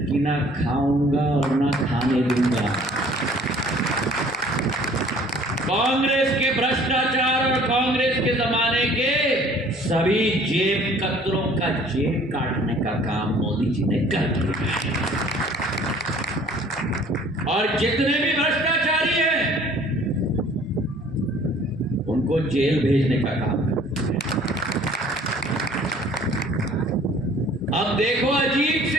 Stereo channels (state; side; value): normal; both; correlation 0.53